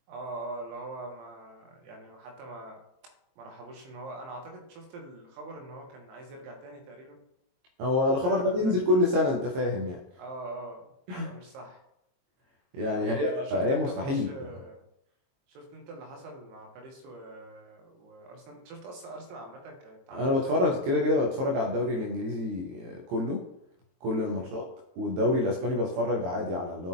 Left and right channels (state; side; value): late; left; 22 ms